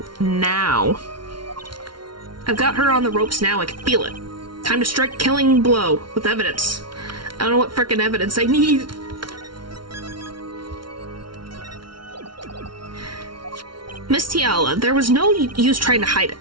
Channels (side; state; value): left; late; 0.73 ms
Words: now. I've got her on the ropes now. I can feel it. Time to strike killing blow with evidence. I don't know what frickin' evidence I need. Miss Tiala, there was no use trying to hide it.